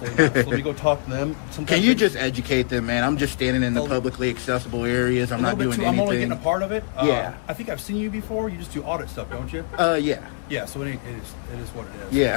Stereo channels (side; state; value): right; silent; 63 dB below the other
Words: not. So let me go talk to them. Can you just educate them, man? I'm just standing in the publicly accessible areas. I'm not doing anything. I'm only getting a part of it. Yeah. I think I've seen you before. You just do audit stuff, don't you? Yeah. Yeah, so it is what it is. Yeah.